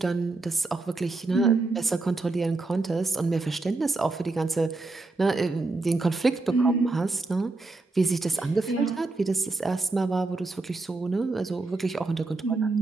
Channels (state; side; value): quieter; left; 3.4 dB